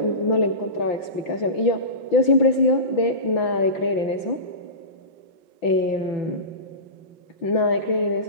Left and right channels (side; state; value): right; late; 6.0 ms